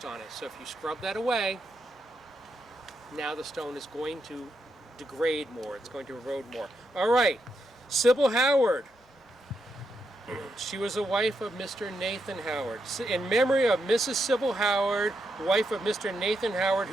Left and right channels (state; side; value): normal; both; correlation 0.82